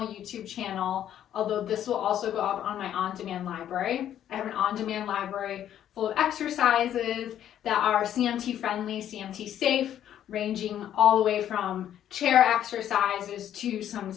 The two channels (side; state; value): right; quieter; 10.7 dB